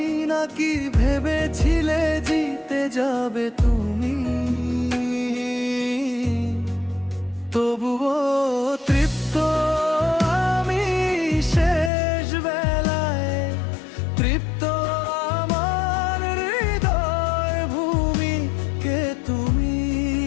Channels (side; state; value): right; drops out; at 11.9 s